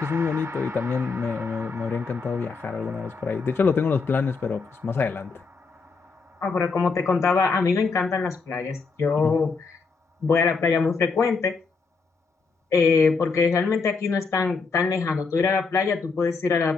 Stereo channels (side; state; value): right; quieter; 4.6 dB